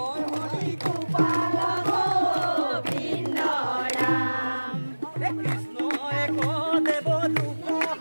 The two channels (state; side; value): inverted; both; correlation -1.00